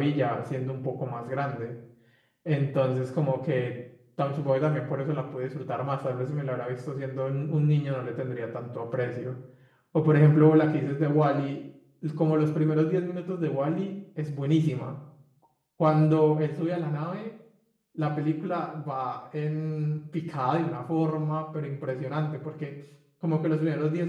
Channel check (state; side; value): identical; both; correlation 1.00